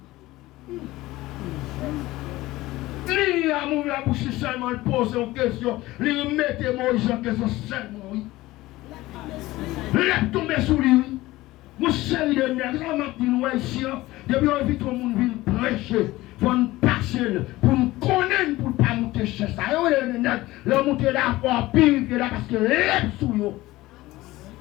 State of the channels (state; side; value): quieter; right; 18.1 dB